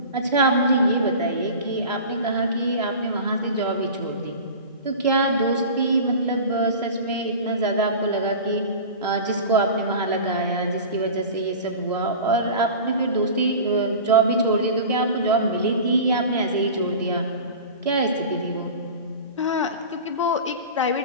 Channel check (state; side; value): inverted; both; correlation -0.34